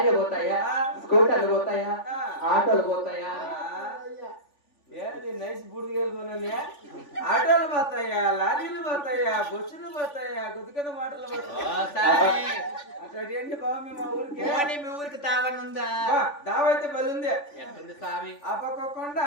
పోతాయా స్కూటర్లు పోతాయా ఆటోలు పోతాయా ఏంది నైస్ బుడిగలు కొనలే ఆటోలు పోతాయా లారీలు పోతాయా బస్సులు పోతాయా గుద్దుకన్న మాటలు ఓ పోతాయా స్వామి అక్కడ ఏంటి బాబు మీ మా ఊరికి పోనీ మీ ఊరికి తావనుందా దావైతే బలి ఉంది ఎట్టుంది స్వామి ఆ పక్క కొండ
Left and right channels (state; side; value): late; right; 3.5 ms